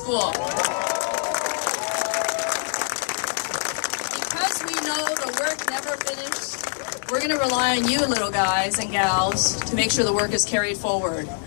Because we know the work never finished, we're going to rely on you little guys and gals to make sure the work is carried forward.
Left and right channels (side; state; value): right; silent; digital silence